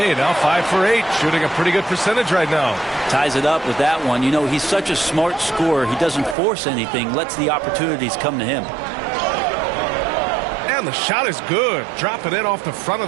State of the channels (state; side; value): drops out; left; at 6.4 s